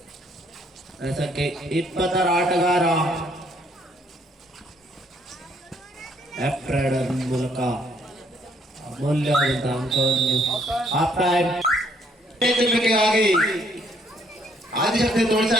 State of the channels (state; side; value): normal; both; correlation 0.67